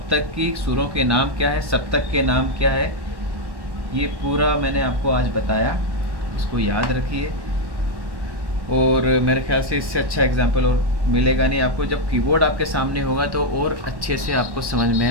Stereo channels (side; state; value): left; late; 1.1 ms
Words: की। सुरों के नाम क्या है, सप्तक के नाम क्या है, ये पूरा मैंने आपको आज बताया। इसको याद रखिए और मेरे ख्याल से इससे अच्छा एग्जाम्पल और मिलेगा नहीं आपको। जब कीबोर्ड आपके सामने होगा तो और अच्छे से आपको समझ में